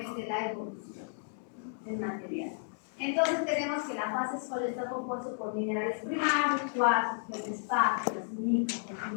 de la evolución del material. Entonces tenemos que la fase sólida está compuesta por minerales primarios, cuarzos, feldespato, las micas, las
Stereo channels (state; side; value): silent; right; digital silence